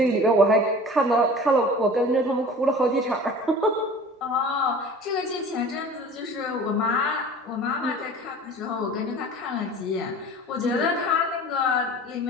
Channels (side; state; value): both; normal; correlation 0.42